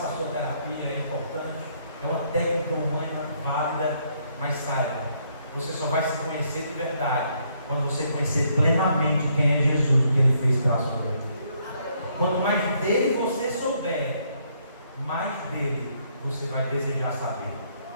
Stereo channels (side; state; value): both; inverted; correlation -0.71